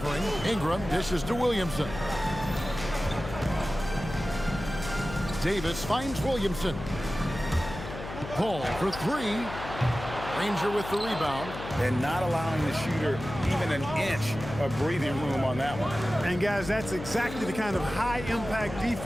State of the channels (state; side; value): noise; left; hum, 10 dB below the sound